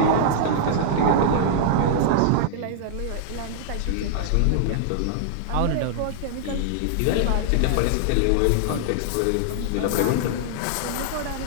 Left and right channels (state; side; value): different; both; correlation -0.01